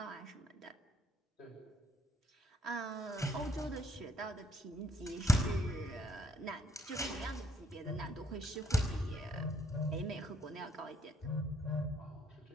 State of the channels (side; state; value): both; normal; correlation 0.68